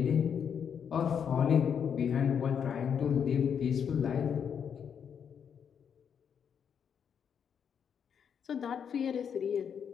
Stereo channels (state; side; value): quieter; right; 7.6 dB